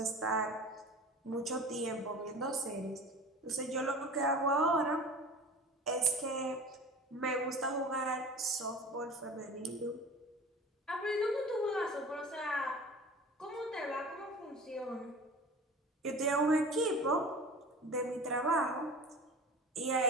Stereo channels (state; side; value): normal; both; correlation 0.38